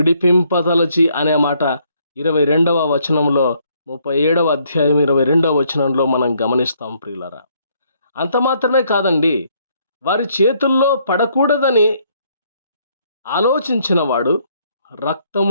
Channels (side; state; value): both; inverted; correlation -0.69